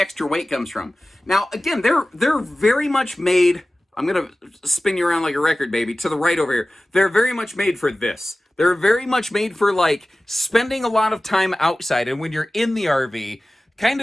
weight comes from. Now, again, they're very much made. I'm going to spin you around like a record, baby, to the right over here. They're very much made for this. They're very much made for, like, spending a lot of time outside. And when you're in the RV, kind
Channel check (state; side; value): normal; both; correlation 0.97